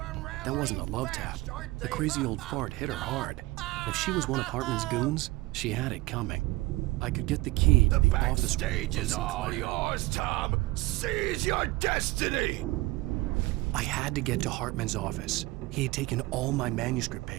That wasn't a love tap. The crazy old fart hit her hard. If she was one of Hartman's goons, she had it coming. I could get the key to the office. The backstage is all yours, Tom. Seize your destiny. I had to get to Hartman's office. He had taken all my manuscript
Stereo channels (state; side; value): quieter; left; 20.4 dB